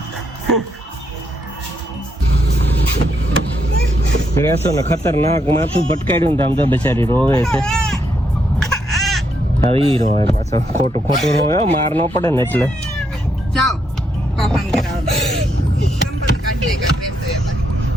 ગ્રેસો ને ખતરનાક માથું ભટકાડ્યું ને આમ તો બેચારી રોવે છે હવે ઈ રોવે પાછો ખોટું રોવે હો, માર ન પડે ને એટલે જાઓ પાપાને કરાવો સંપર્ક કાઢી લે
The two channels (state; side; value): normal; both; correlation 0.77